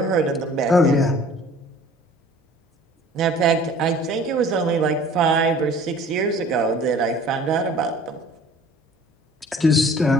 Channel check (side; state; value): both; normal; correlation 0.49